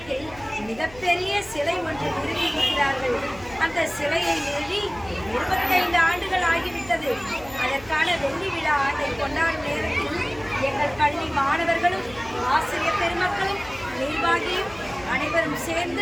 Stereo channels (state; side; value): noise; left; hum, 20 dB below the sound